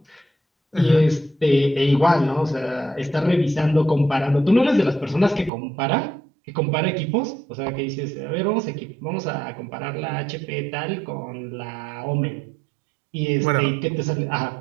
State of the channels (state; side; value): drops out; left; at 5.5 s